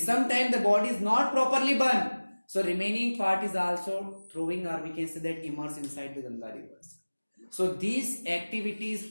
sometime the body is not properly burned, so remaining part is also throwing, or we can say that immersed inside the Ganga rivers. So these activities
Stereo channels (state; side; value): inverted; both; correlation -1.00